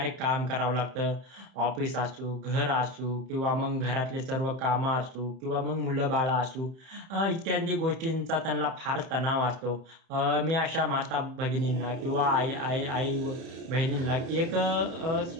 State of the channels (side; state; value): left; late; 30 ms